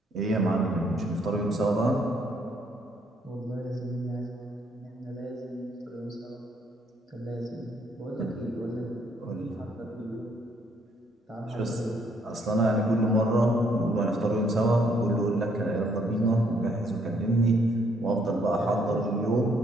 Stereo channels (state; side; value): normal; both; correlation 0.69